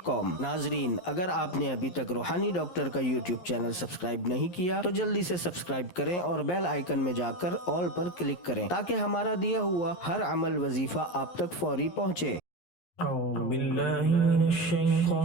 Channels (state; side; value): late; right; 11 ms